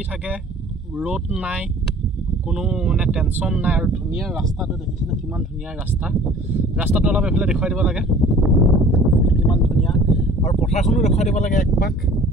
থাকে ৰ'দ নাই কোনো মানে টেনচন নাই আৰু ধুনীয়া ৰাস্তাটো দেখিছেনে কিমান ধুনীয়া ৰাস্তাটো অলপ এফালে দেখুৱাই দিব লাগে কিমান ধুনীয়া আৰু পথাৰখনো দেখুৱাই দিব লাগে একপাক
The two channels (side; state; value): both; normal; correlation 0.49